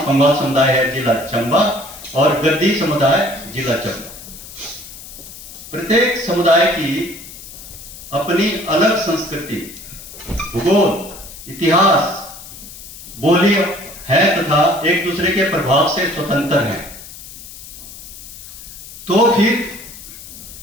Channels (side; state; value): left; noise; hiss, 15 dB below the sound